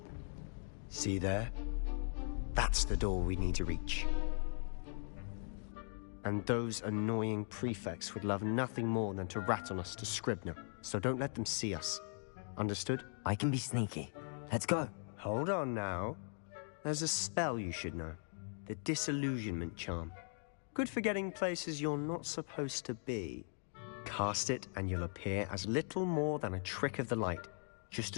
See there? That's the door we need to reach. And those annoying prefects would love nothing more than to rat on us to Scribner, so don't let them see us. Understood? I can be sneaky. Let's go. Hold on now. There's a spell you should know. The Disillusionment Charm. Good for getting places you're not supposed to be. Cast it and you'll appear as little more than a trick of the light, just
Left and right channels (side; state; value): right; silent; 51 dB below the other